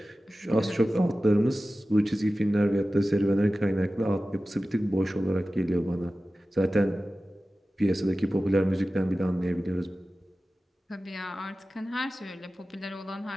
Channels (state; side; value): normal; both; correlation 0.95